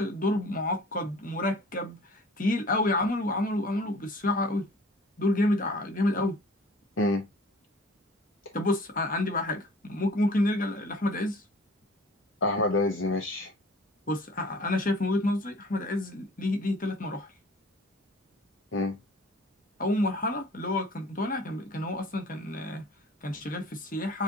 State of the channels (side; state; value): both; normal; correlation 0.48